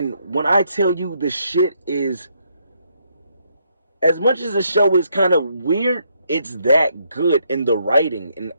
when I tell you the shit is, as much as the show is kind of weird, it's that good in the writing and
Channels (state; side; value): inverted; both; correlation -0.74